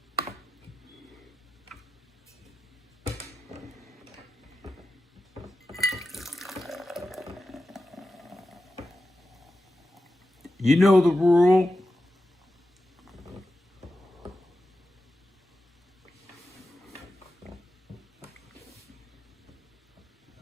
You know the rule.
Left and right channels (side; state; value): both; normal; correlation 0.92